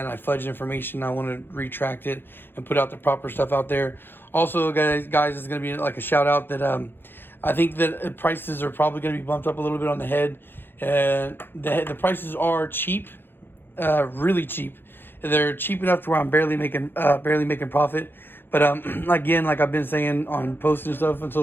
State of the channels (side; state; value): right; late; 0.10 ms